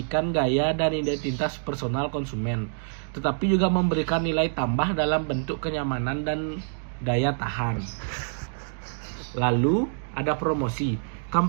gaya dan identitas personal konsumen, tetapi juga memberikan nilai tambah dalam bentuk kenyamanan dan daya tahan. Lalu ada promosi.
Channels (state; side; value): silent; left; digital silence